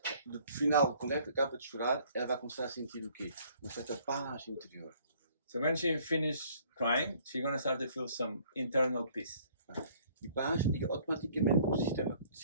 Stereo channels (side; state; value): both; inverted; correlation -0.59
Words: no final, quando ela acaba de chorar, ela vai começar a sentir o quê? Uma certa paz interior. so when she finishes crying, she's going to start to feel some internal peace. E paz liga automaticamente para o sistema de